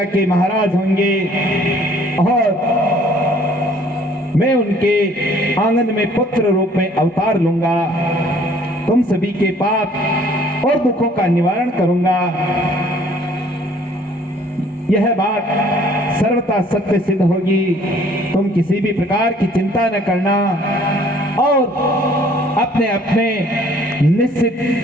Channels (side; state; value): both; normal; correlation 0.57